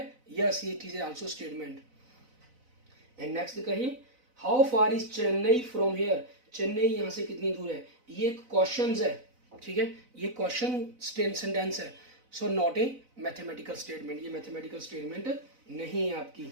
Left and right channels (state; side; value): late; left; 4.0 ms